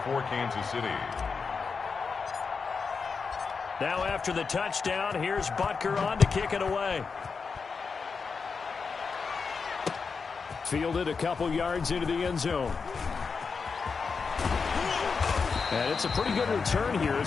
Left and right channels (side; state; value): right; quieter; 5.2 dB